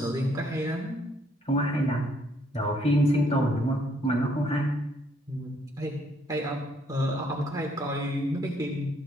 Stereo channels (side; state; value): both; normal; correlation 0.68